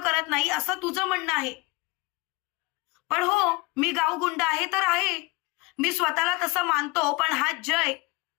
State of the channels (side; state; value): right; quieter; 24.7 dB